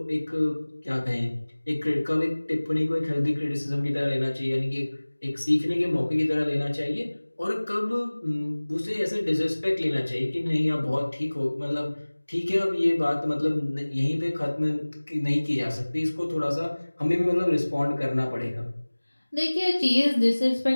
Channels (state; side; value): inverted; both; correlation -1.00